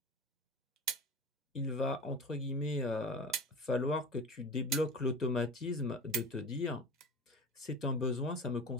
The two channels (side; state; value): both; normal; correlation 0.34